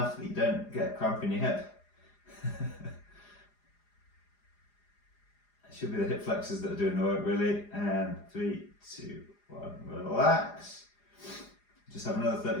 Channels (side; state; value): right; late; 4.9 ms